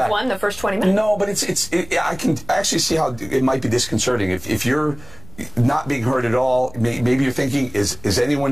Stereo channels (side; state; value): left; noise; rumble, 21 dB below the sound